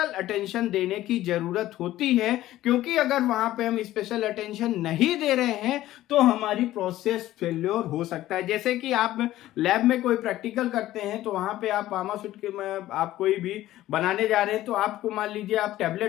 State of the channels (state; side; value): quieter; right; 14.8 dB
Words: अटेंशन देने की जरूरत होती है, क्योंकि अगर वहां पे हम स्पेशल अटेंशन नहीं दे रहे हैं तो हमारी प्रोसेस फेल्योर हो सकता है। जैसे कि आप लैब में कोई प्रैक्टिकल करते हैं तो वहां पे आप फार्मास्यूट के में आप कोई भी बनाने जा रहे हैं, तो आपको मान लीजिए आप